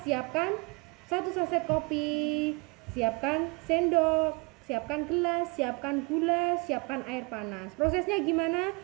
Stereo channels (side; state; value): left; quieter; 30.7 dB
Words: 1 saset kopi, siapkan sendok, siapkan gelas, siapkan gula, siapkan air panas. Prosesnya gimana?